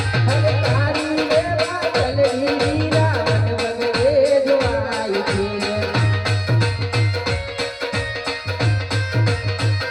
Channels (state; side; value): identical; both; correlation 1.00